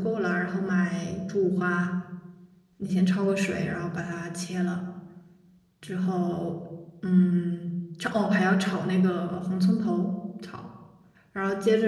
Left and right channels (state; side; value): identical; both; correlation 1.00